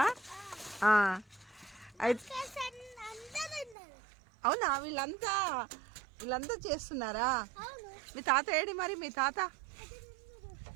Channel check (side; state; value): left; drops out; at 3.8 s